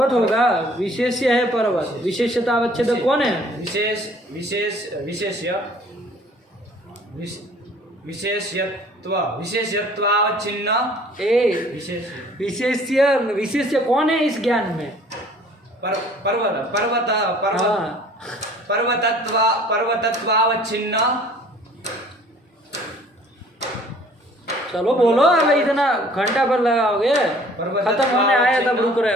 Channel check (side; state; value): both; normal; correlation 0.53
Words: होगा, विशेष्य है पर्वत। विशेषता अवच्छेदक कौन है? विशेष्यत्वावच्छिन्न। विशेष्य कौन है इस ज्ञान में? पर्वतत्वावच्छिन्न। चलो बोलो, अब इतना घंटा भर लगाओगे, खत्म होने आया तब रुक रहे